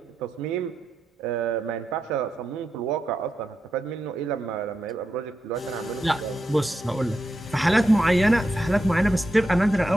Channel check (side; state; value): both; normal; correlation 0.86